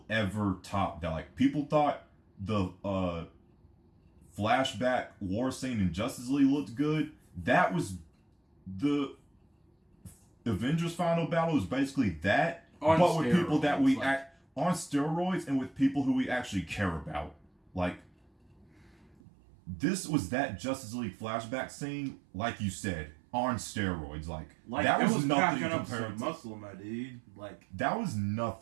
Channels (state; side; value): drops out; left; at 19.2 s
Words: ever top that. Like, people thought the flashback war scene in Justice League looked good. That was the Avengers final battle, was basically that but with people that we like, on steroids and with people who we actually care about. Like, this was that Justice League flashback scene, like you said, on steroids. Like that was nothing compared to muscle, my dude. Like, that was